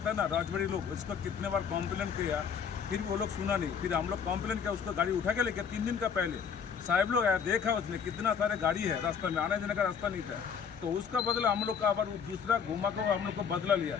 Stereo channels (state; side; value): quieter; right; 6.9 dB